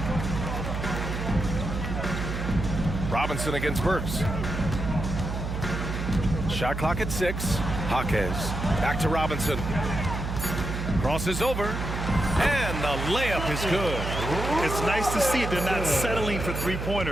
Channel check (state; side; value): noise; right; hum, 4 dB below the sound